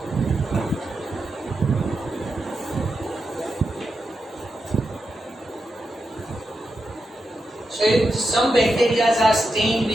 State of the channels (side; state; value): both; normal; correlation 0.87